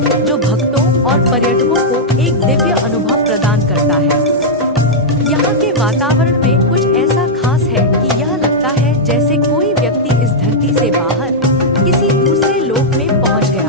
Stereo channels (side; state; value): both; normal; correlation -0.06